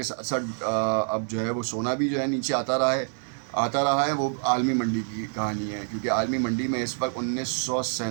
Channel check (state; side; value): silent; left; 60 dB below the other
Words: साथ साथ अब जो है वो सोना भी जो है नीचे आता रहा है। वो आलमी मंडी की कहानी है, क्योंकि आलमी मंडी में इस वक्त